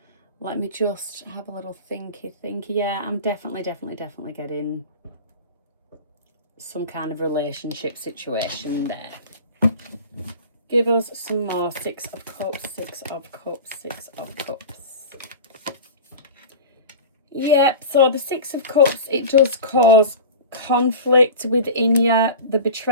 Let me just have a little thinky. Yeah, I'm definitely getting some kind of relationship situation there. Give us some more. 6 of Cups, 6 of Cups, 6 of Cups. Yep, so the 6 of Cups, it does cause conflict within you. The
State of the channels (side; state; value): both; inverted; correlation -0.33